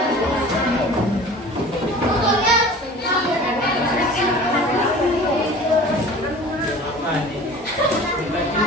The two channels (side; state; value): both; normal; correlation 0.42